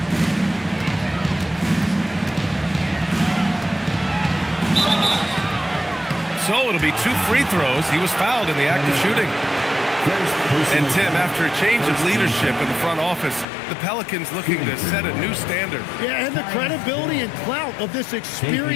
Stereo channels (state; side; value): drops out; right; at 13.5 s